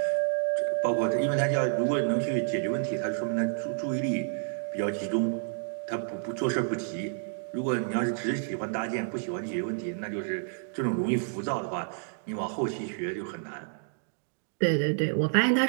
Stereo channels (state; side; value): silent; left; digital silence